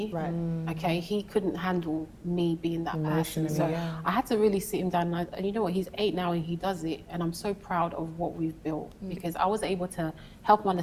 Right. Okay, he couldn't handle me being that person. So I had to really sit him down. And you know what, he's 8 now and he does it. And I'm so proud of what we've built because I was able to help him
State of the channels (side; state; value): both; identical; correlation 1.00